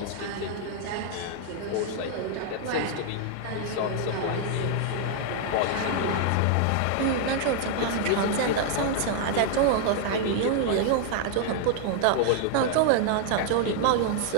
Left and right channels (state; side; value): different; both; correlation 0.00